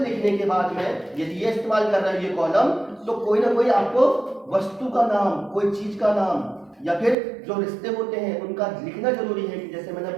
के बाद में यदि ये इस्तेमाल कर रहा है ये कॉलम, तो कोई ना कोई आपको वस्तु का नाम, कोई चीज का नाम, या फिर जो रिश्ते होते हैं उनका लिखना जरूरी है। कि जैसे मैंने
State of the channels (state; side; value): drops out; left; at 7.2 s